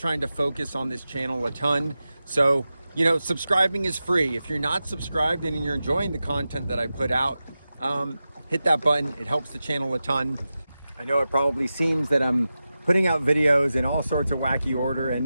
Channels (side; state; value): both; inverted; correlation -0.93